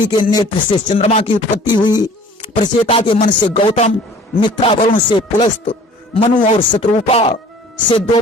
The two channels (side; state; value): both; normal; correlation 0.49